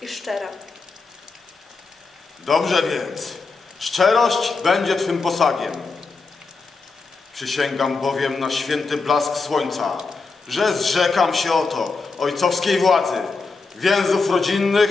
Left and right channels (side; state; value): right; quieter; 4.2 dB